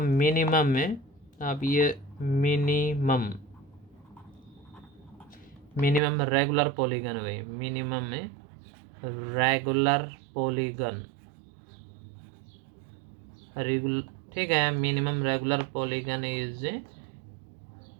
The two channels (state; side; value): drops out; left; at 6.0 s